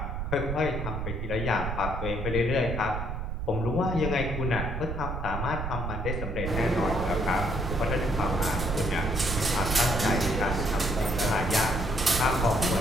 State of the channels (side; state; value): right; noise; rumble, 4 dB below the sound